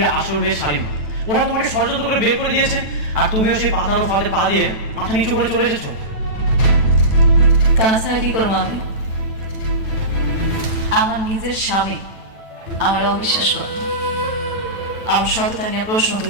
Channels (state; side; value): late; left; 9.1 ms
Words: আসল মেয়ে শালিমা, ওরা তোমাকে ষড়যন্ত্র করে বের করে দিয়েছে, আর তুমিও সেই পাতানো ফাঁদে পা দিয়ে মাথা নিচু করে চলে এসেছো। তাছাড়া কি করবো আমি? আমার নিজের স্বামী আমার অবিশ্বাস করে, আমার সততা নিয়ে প্রশ্ন